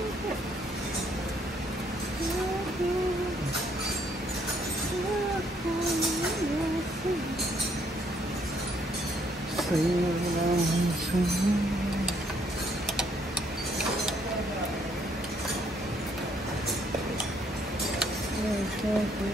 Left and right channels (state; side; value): normal; both; correlation 0.69